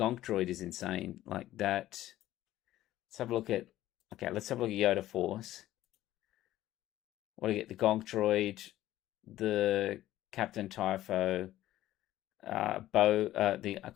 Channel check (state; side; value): quieter; right; 14.4 dB